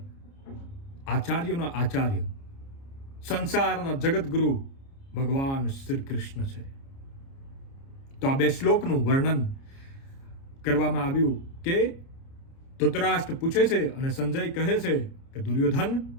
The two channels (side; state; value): right; late; 30 ms